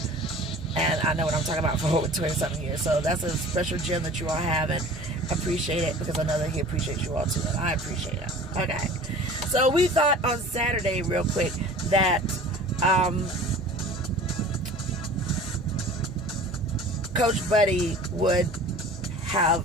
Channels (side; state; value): both; normal; correlation 0.43